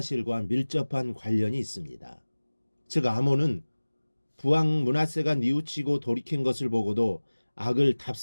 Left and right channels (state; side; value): inverted; both; correlation -1.00